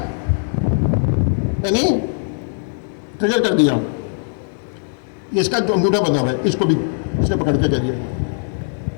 यानी ट्रिगर कर दिया, इसका जो अंगूठा बना हुआ है इसको भी इसने पकड़ के कह दिया।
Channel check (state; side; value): silent; right; digital silence